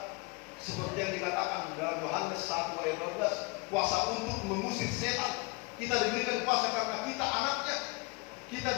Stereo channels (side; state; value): right; quieter; 27.0 dB